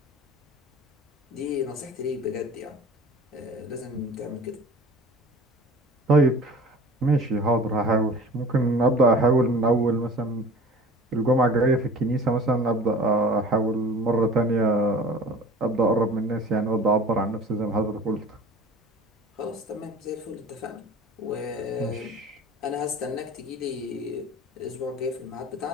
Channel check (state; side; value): normal; both; correlation 0.42